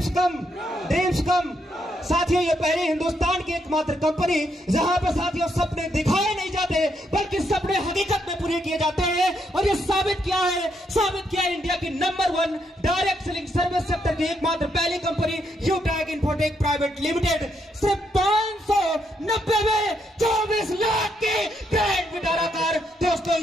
come, dreams come. साथियों ये पहले हिंदुस्तान की एकमात्र कंपनी जहां पर साथियों सपने दिखाए नहीं जाते बल्कि सपने हकीकत में पूरे किए जाते हैं। और ये साबित किया है इंडिया की number 1 direct selling service sector की एकमात्र पहली कंपनी यूटैग इन्फोटेक प्राइवेट लिमिटेड। सिर्फ 590 में 24 लाख की ग्रैंड विटारा कार दोस्तों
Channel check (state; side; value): normal; both; correlation 0.77